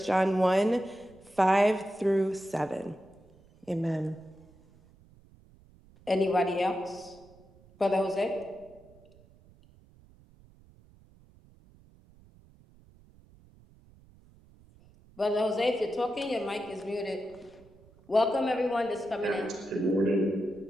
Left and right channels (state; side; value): noise; right; rumble, 27 dB below the sound